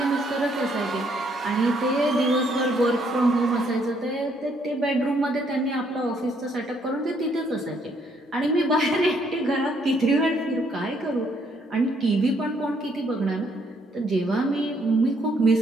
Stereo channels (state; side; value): normal; both; correlation 0.69